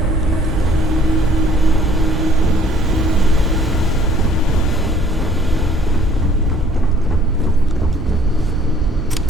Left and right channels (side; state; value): both; normal; correlation 0.59